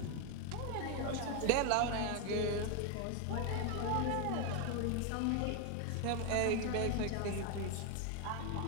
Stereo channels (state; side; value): different; both; correlation 0.01